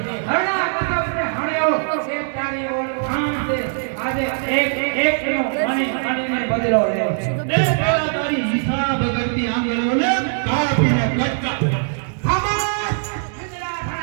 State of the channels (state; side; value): silent; left; digital silence